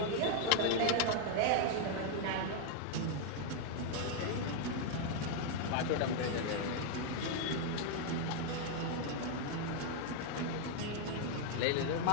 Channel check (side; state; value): both; different; correlation 0.00